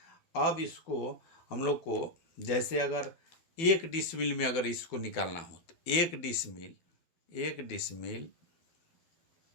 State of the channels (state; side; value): late; right; 12 ms